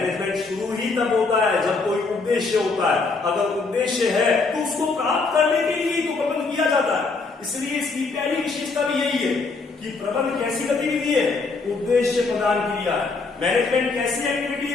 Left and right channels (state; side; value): quieter; right; 4.0 dB